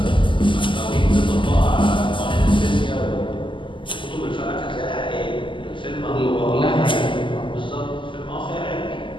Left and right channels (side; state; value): right; late; 0.24 ms